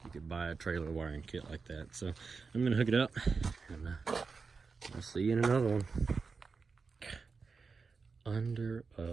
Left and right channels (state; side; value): quieter; left; 4.8 dB